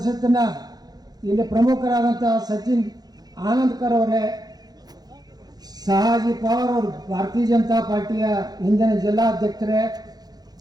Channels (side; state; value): left; late; 0.19 ms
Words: ಇಲ್ಲಿ ಪ್ರಮುಖರಾದಂಥ ಸಚಿನ್ ಆನಂದ್ಕರ್ ಅವರೇ, ಶಹಾಜಿ ಪವಾರ್ ಅವರು ಭಾರತೀಯ ಜನತಾ ಪಾರ್ಟಿಯ ಹಿಂದಿನ ಜಿಲ್ಲಾಧ್ಯಕ್ಷರೇ,